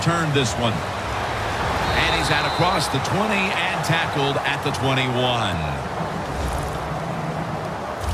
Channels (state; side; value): identical; both; correlation 1.00